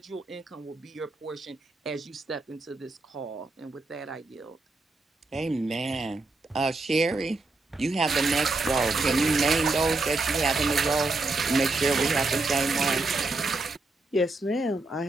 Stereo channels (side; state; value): left; quieter; 3.2 dB